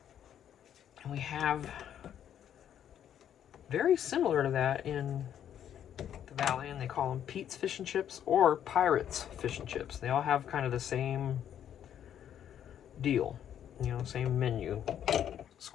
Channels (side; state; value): right; quieter; 9.8 dB